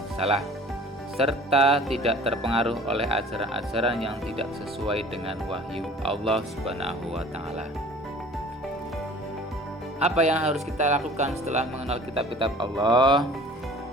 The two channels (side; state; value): both; normal; correlation 0.47